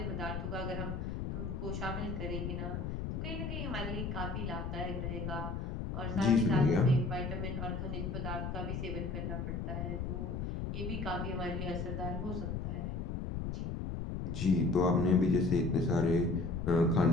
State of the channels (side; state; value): left; noise; rumble, 3 dB below the sound